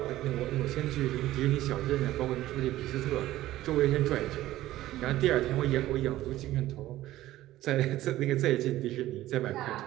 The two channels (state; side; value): quieter; left; 15.2 dB